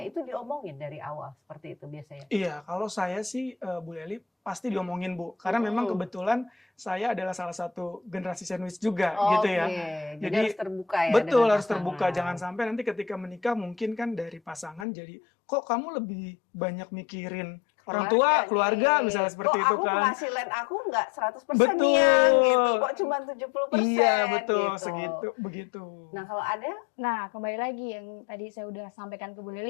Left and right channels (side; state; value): right; drops out; at 14.9 s